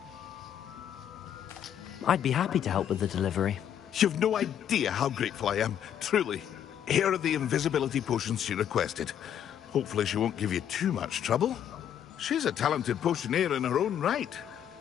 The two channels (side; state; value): right; quieter; 9.6 dB